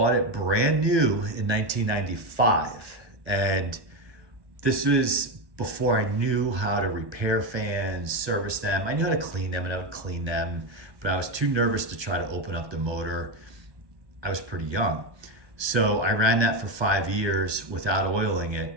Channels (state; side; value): late; left; 1.2 ms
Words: it brand new in 1995, and this was before I knew how to repair fans, service them. I knew how to clean them, and I would clean them, but I was too nervous to try to open up the motor. I was pretty young. So I ran that for 5 years without oiling